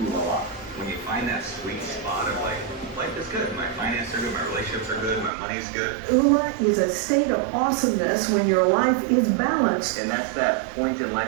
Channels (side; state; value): left; drops out; at 5.3 s